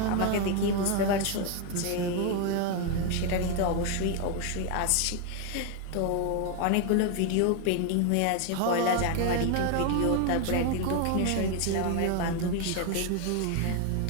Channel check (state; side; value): different; both; correlation 0.01